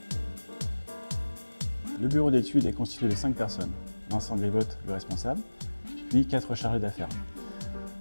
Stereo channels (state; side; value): inverted; both; correlation -1.00